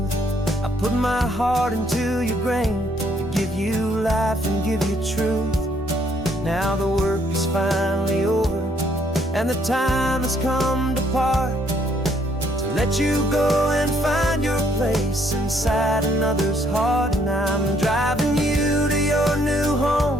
I put my heart into your grain to give you life and give you truth. Now the work is finally over, and the time has come to part, to let you go and find your place inside another's heart. And I'm driving you to your new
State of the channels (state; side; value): normal; both; correlation 0.68